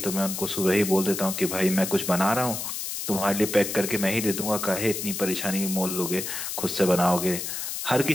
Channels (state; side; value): noise; left; hiss, 5 dB below the sound